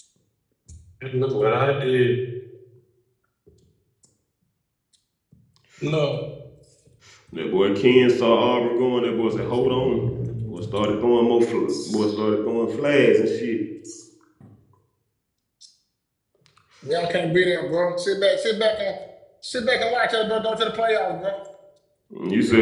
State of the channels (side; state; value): both; identical; correlation 1.00